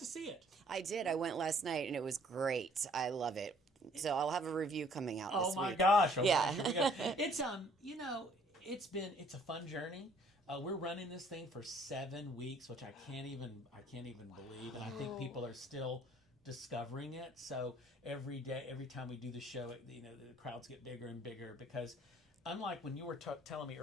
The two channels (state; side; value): normal; both; correlation 0.59